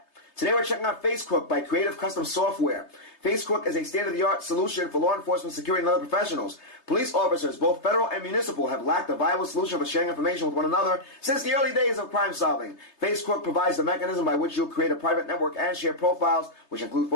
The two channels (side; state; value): right; late; 3.3 ms